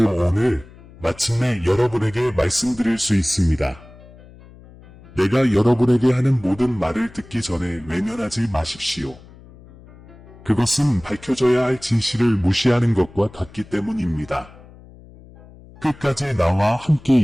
오늘 마침내 여러분에게 말씀드릴 수 있습니다. 내가 여러분에게 하는 모든 말을 듣기 전에 외면하지 마십시오. 그것은 밝혀져야 할 진실을 무시하는 것과 같기 때문입니다. 끝까지 나와 함께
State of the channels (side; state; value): left; noise; hum, 22 dB below the sound